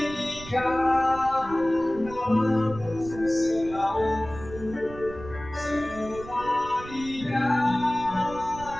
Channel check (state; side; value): noise; right; rumble, 15 dB below the sound